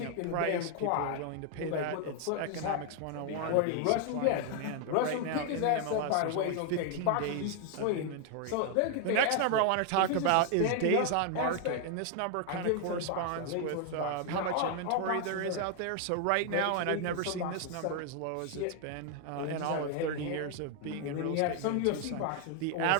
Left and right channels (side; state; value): both; different; correlation 0.00